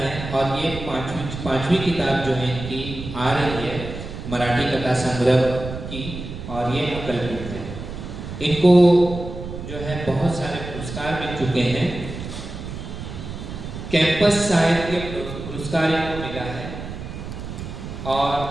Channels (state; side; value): noise; right; rumble, 9 dB below the sound